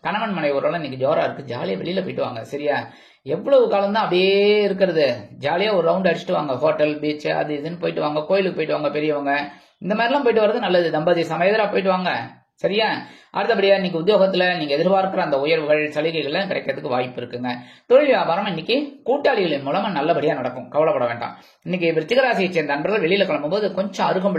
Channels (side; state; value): both; identical; correlation 1.00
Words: கணவன் மனைவி ஓரளவு இன்னைக்கு ஜோரா இருக்கு. ஜாலியா வெளியில போயிட்டு வாங்க. சரியா? எவ்வளவு காலம் தான் அப்படியே இருக்கிறது? ஜாலியா ஒரு ரவுண்ட் அடிச்சுட்டு வாங்க. ஹோட்டல், பீச், அது இதுன்னு போயிட்டு வாங்க. கோயிலுக்கு போயிட்டு வாங்க. பெரியவங்க இந்த மாதிரிலாம் போயிட்டு வர்றது நல்லது. தம்பதி சமேதரா போயிட்டு வாங்க. சரியா? அடுத்தபடியா இன்னைக்கு உத்தியோகத்துல நீங்க எதிர்பார்க்கிற அந்த உயர்வுகள் சலுகைகள் கிடைக்கிறதுக்கு வாய்ப்பு இருக்குங்க. தொழில் வியாபாரம் இன்னைக்கு கூட்டாளிகளின் மூலமா நல்லபடியா நடக்கும். கவலைப்பட வேண்டாம். இன்னைக்கு விருச்சிக ராசியை சேர்ந்த நண்பர்கள் வெளியில கிளம்பும் போது கொஞ்சம்